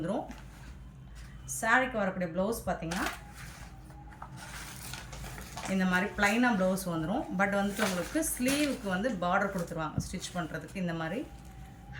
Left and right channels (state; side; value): identical; both; correlation 1.00